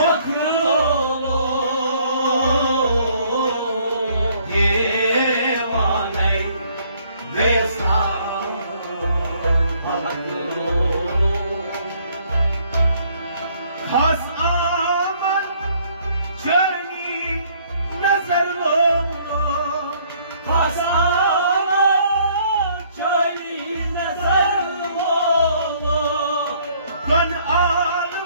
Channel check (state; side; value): inverted; both; correlation -0.63